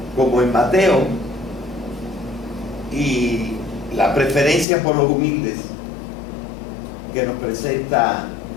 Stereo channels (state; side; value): drops out; right; at 4.7 s